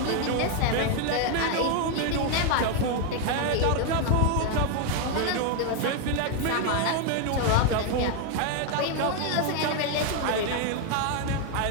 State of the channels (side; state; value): both; different; correlation 0.01